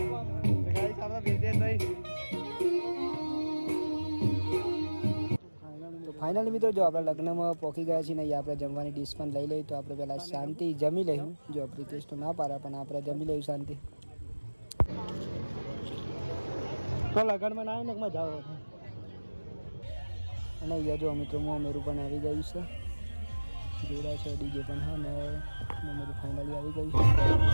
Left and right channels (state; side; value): inverted; both; correlation -1.00